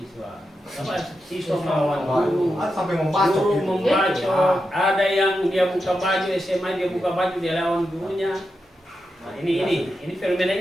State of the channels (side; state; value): both; normal; correlation 0.88